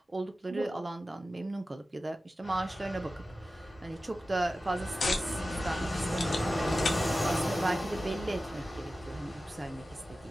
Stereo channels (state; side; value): normal; both; correlation 0.94